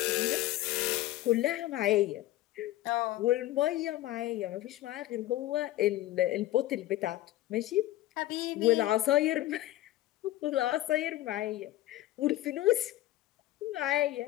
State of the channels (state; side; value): quieter; right; 15.5 dB